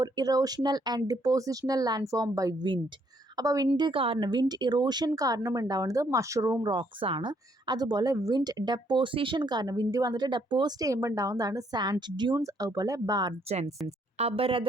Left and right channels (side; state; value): both; normal; correlation 0.70